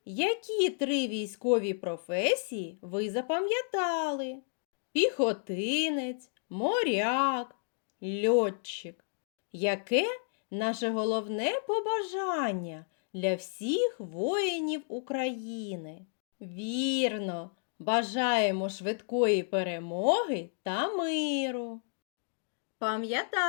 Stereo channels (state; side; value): silent; right; digital silence